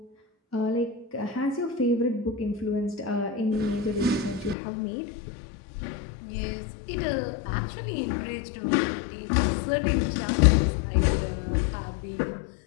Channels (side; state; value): right; drops out; at 4.5 s